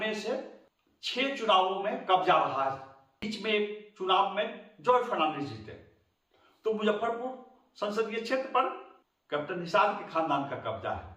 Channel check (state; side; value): identical; both; correlation 1.00